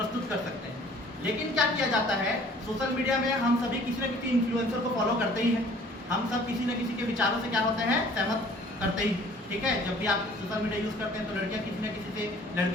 कर सकते हैं। लेकिन क्या किया जाता है, सोशल मीडिया में हम सभी किसी न किसी इन्फ्लुएंसर को फॉलो करते ही हैं, हम सब किसी न किसी के विचारों से क्या होते हैं, सहमत करते ही, ठीक है। जब भी आप सोशल मीडिया यूज़ करते हैं तो लड़कियां किसी न किसी से,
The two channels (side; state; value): both; normal; correlation 0.53